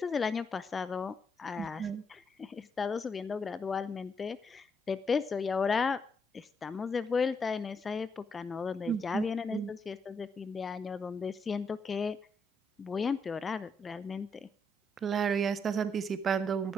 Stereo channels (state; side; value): normal; both; correlation 0.78